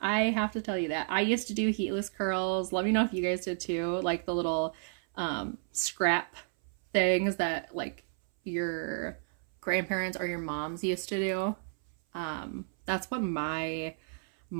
have to tell you that. I used to do heatless curls. Let me know if you guys did too, like the little scrap things that like your grandparents or your moms used to do. That's what my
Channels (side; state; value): left; silent; 57 dB below the other